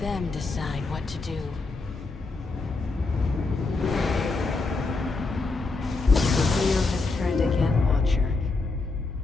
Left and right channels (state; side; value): quieter; right; 3.7 dB